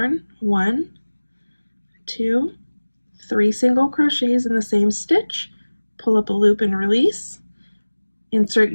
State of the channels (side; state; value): both; inverted; correlation -1.00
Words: 1, 2, 3 single crochets in the same stitch. Pull up a loop and release. Insert